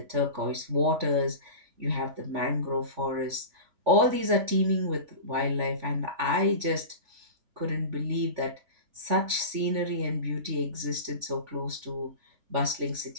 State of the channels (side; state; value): left; late; 3.5 ms